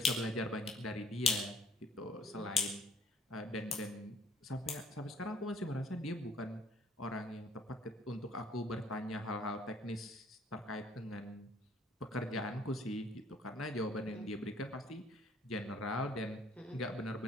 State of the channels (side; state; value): both; normal; correlation 0.56